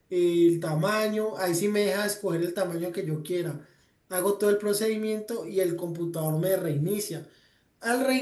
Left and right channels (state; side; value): identical; both; correlation 1.00